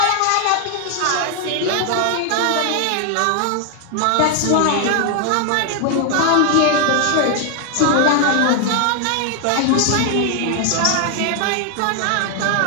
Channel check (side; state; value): both; different; correlation 0.00